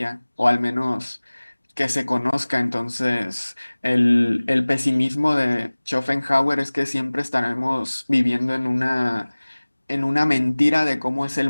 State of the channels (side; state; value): both; inverted; correlation -1.00